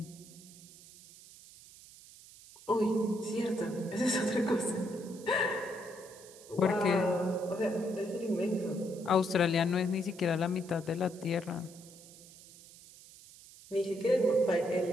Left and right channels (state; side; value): noise; right; hiss, 20 dB below the sound